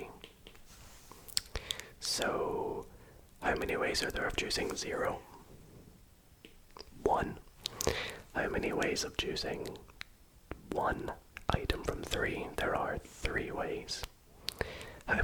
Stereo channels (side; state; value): both; identical; correlation 1.00